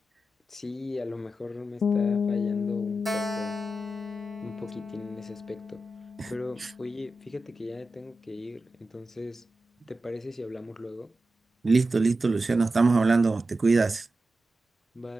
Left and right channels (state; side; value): normal; both; correlation 0.91